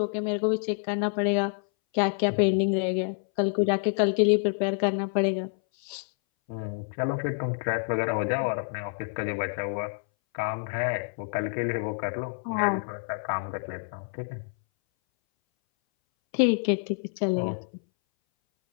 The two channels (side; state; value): right; silent; 60 dB below the other